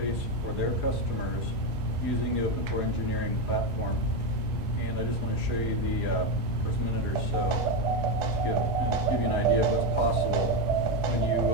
for their customers using the Open Core Engineering platform. And I just want to show you the first minute or so to give you an idea of what's possible when you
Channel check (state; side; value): normal; both; correlation 0.10